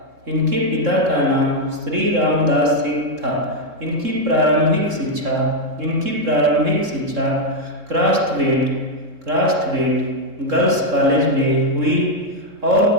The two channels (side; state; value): left; late; 3.7 ms